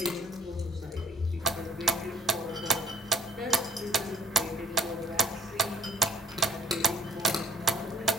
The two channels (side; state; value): both; normal; correlation 0.56